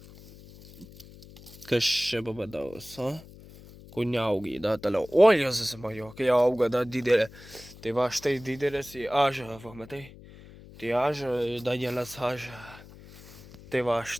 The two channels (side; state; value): left; noise; hum, 19 dB below the sound